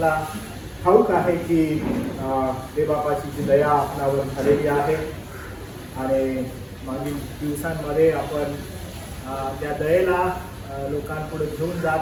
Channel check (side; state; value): both; identical; correlation 1.00